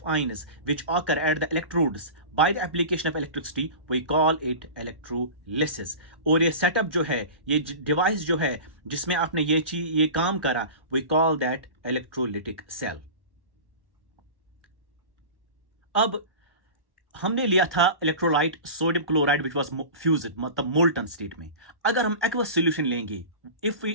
ions which occur at the electrodes by the application of electricity, we call it electrolysis. और ये सेटअप जो है, ये डिवाइस जो है जिसमें आपने ये काम करा, we call that electrolytic cell. अब हमने लिया था electrolyte sodium chloride which was fused, मतलब मोल्टन स्टेट में. अगर हम एक्वस सॉल्यूशन लेंगे,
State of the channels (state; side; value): late; left; 1.1 ms